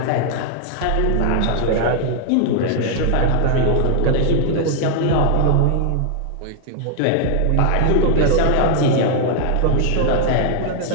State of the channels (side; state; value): both; different; correlation 0.00